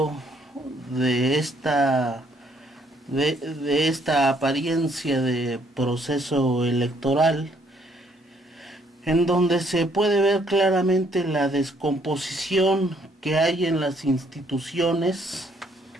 de esta apariencia de proceso electoral, en donde se puede ver claramente la descomposición que hay en las instituciones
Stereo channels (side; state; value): both; normal; correlation 0.67